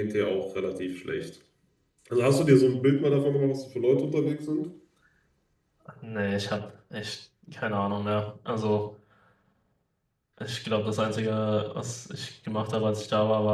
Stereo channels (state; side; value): identical; both; correlation 1.00